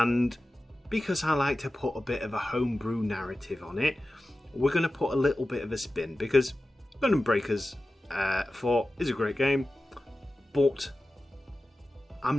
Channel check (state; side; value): normal; both; correlation 0.94